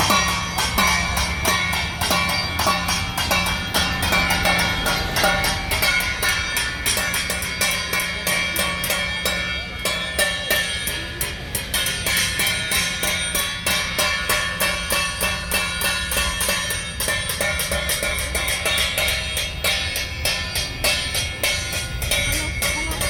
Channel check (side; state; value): both; identical; correlation 1.00